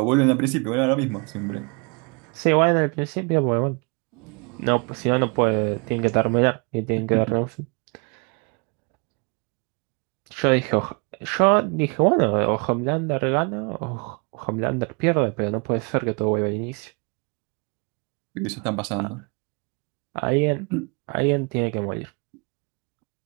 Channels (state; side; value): quieter; left; 33.3 dB